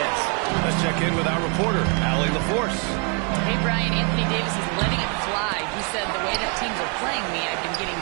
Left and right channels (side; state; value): left; quieter; 36.4 dB